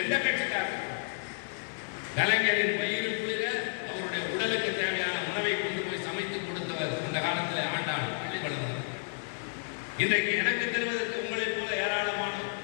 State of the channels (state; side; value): silent; right; digital silence